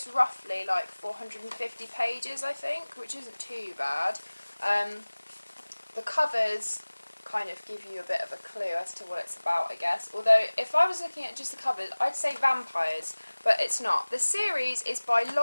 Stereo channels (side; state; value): both; inverted; correlation -1.00